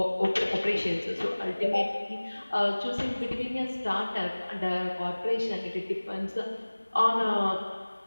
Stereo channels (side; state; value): both; inverted; correlation -1.00